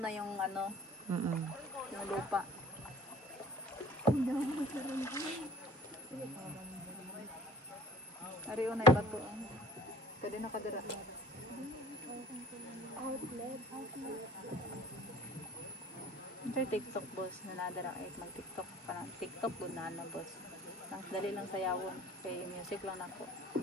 na yung ano, yung lupa. Ariyo na iba to. Pwede nakadira. Ito yung TikTok, boss, na nadara ay mag-TikTok ka na. TikTok doon na boss. Nang dali lang sayawon. Kay music lang ako.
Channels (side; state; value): both; normal; correlation 0.48